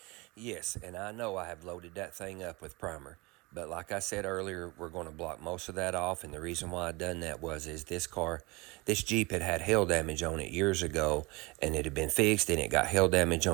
Yes, and I know I have loaded that thing up with primer. But like I said earlier, we're going to block most of that off. And the reason why I done that is this Jeep had hail damage on it years ago. And it had been fixed and it got hail damage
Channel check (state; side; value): quieter; left; 24.8 dB